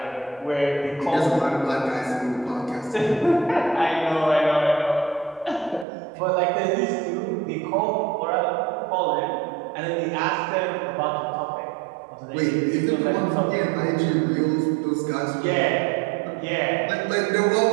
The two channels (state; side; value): drops out; left; at 5.9 s